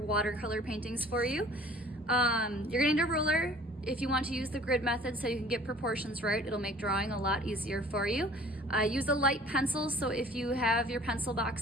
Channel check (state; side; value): normal; both; correlation 0.50